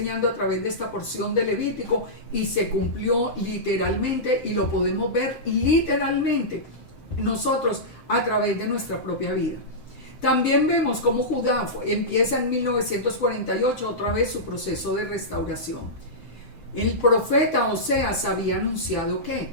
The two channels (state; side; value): late; right; 7.7 ms